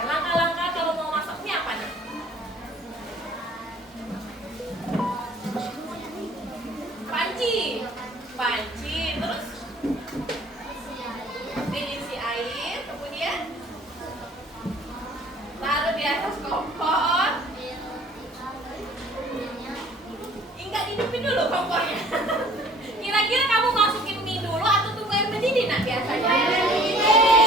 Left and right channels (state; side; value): normal; both; correlation 0.52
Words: langkah-langkah kalau mau masak mie apa nih? Panci, terus diisi air, kemudian taruh di atas kompor. Enggak dihidupin dulu kompornya. Kira-kira kamu masukin mie dulu atau tunggu air mendidih nak biasanya?